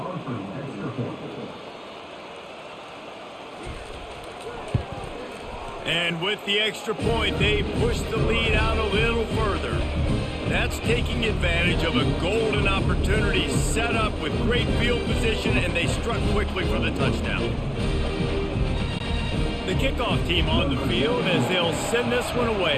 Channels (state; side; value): identical; both; correlation 1.00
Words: And with the extra point, they push the lead out a little further. That's taking advantage of a golden opportunity set up with great field position, and they struck quickly for the touchdown. The kickoff team on the field as they'll send this one away.